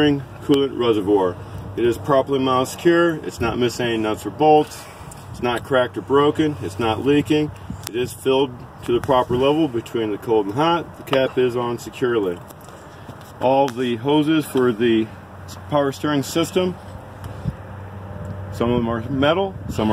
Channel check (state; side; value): identical; both; correlation 1.00